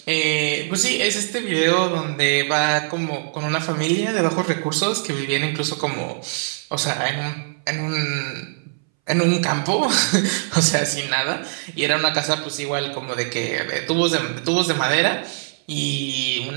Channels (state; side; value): silent; left; 63 dB below the other